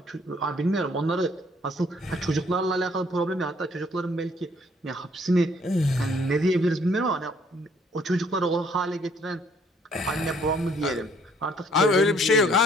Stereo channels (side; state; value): both; normal; correlation 0.63